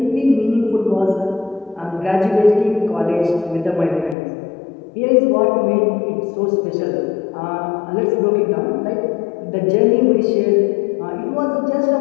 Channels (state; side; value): drops out; right; at 4.2 s